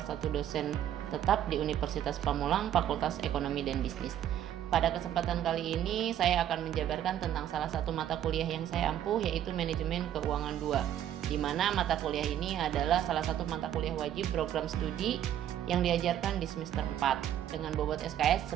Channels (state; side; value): quieter; left; 11.0 dB